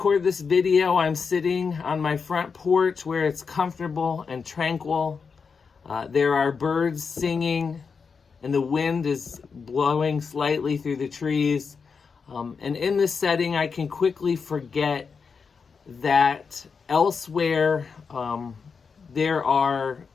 this video, I'm sitting on my front porch where it's comfortable and tranquil. There are birds singing and the wind is blowing slightly through the trees. And in this setting, I can quickly forget that elsewhere there are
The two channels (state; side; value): quieter; right; 5.5 dB